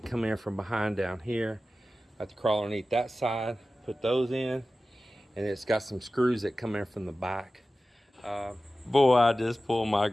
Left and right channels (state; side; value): normal; both; correlation 0.95